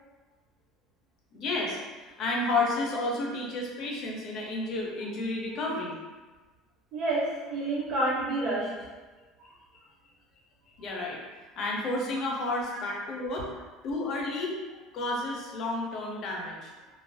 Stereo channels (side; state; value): both; normal; correlation 0.39